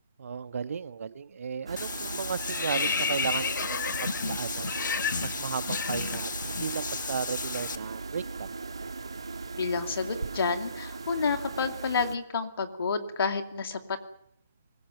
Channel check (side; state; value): both; inverted; correlation -0.57